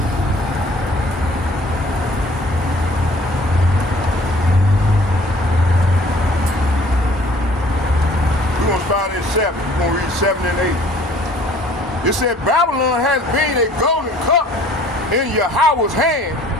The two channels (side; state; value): both; normal; correlation 0.54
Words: We're going to start at 7. We're going to read 7 and 8. It said, Babylon has been a golden cup in Yahweh's hand